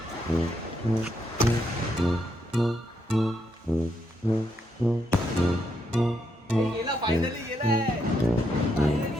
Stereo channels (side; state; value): both; normal; correlation 0.78